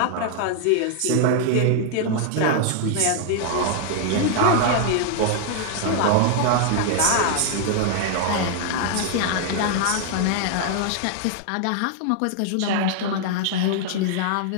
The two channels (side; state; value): both; different; correlation 0.00